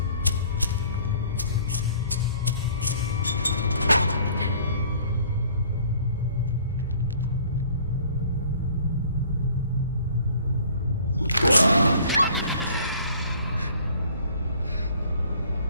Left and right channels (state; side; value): inverted; both; correlation -0.54